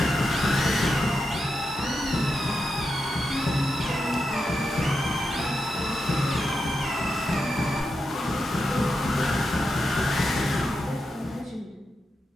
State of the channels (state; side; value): normal; both; correlation 0.87